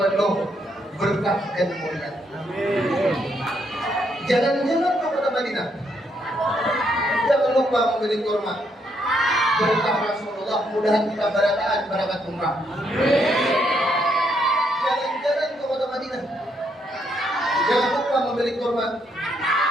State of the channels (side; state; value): both; normal; correlation 0.75